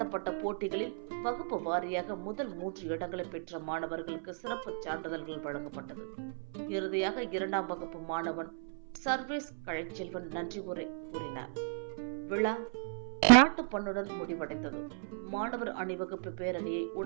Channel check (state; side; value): silent; left; 54 dB below the other